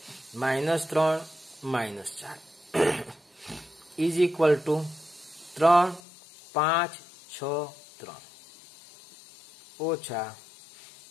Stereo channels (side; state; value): right; drops out; at 6.0 s